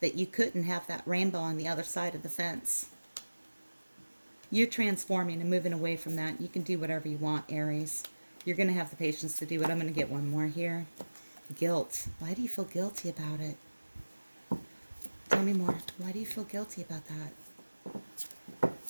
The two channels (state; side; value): inverted; both; correlation -1.00